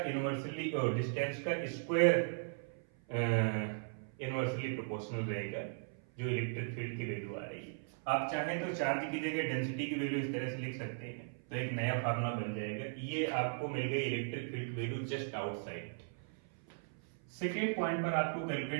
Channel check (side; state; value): left; silent; 53 dB below the other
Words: इनवर्सली और डिस्टेंस का स्क्वायर इनवर्सली प्रोपोर्शनल रहेगा जो इलेक्ट्रिक फील्ड की वैल्यू आ रही है। आप चाहें तो चार्ज की जगह डेंसिटी की वैल्यू इस तरह से लिख सकते हैं तो एक नया फार्मूला बन जाएगा। ये आपको मिल गई electric field value just outside. Second point पर आपको